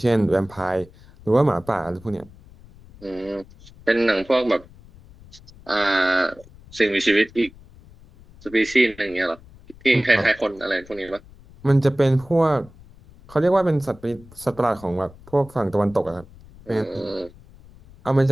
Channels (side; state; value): left; noise; rumble, 23 dB below the sound